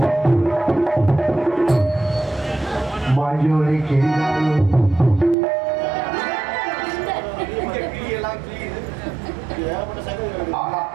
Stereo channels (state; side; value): drops out; left; at 5.4 s